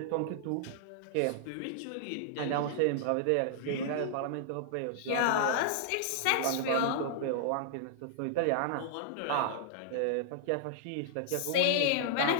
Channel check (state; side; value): different; both; correlation -0.01